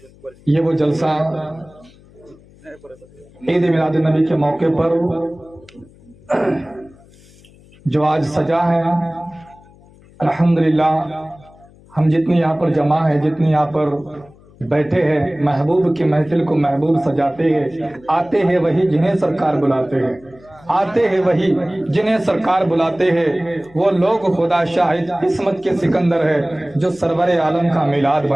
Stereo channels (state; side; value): noise; left; hum, 26 dB below the sound